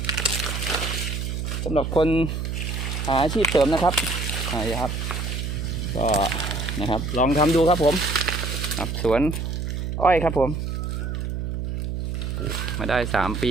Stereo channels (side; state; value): right; noise; hum, 3 dB below the sound